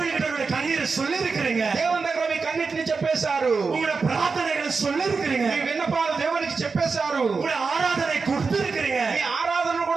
கண்ணீரை சொல்லி இருக்கிறீங்க. దేవుని దగ్గర మీ కన్నిటిని చెప్పేశారు. உங்களுடைய பிரார்த்தனைகளை சொல்லி இருக்கிறீங்க. మీ విన్నపాలు దేవునికి చెప్పేశారు. உங்களுடைய ஆராதனை கொடுத்து இருக்கிறீங்க. మీ ఆరాధనను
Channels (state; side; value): quieter; left; 4.7 dB